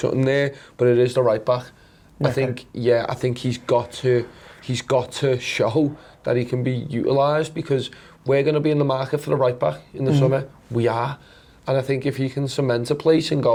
there, but it is the right back. I think he's got to show that he can be utilised, because we're going to be in the market for the right back in the summer. We are. And I think if he can cement a place and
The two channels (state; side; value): identical; both; correlation 1.00